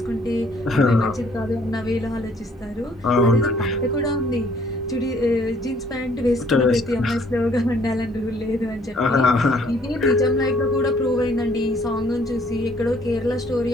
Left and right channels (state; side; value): normal; both; correlation 0.62